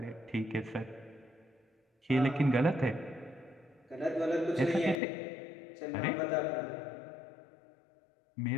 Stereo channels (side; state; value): right; drops out; at 5.0 s